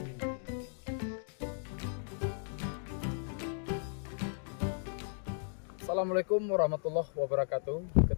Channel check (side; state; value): right; silent; digital silence